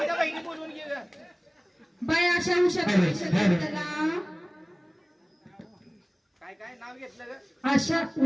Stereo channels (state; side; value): identical; both; correlation 1.00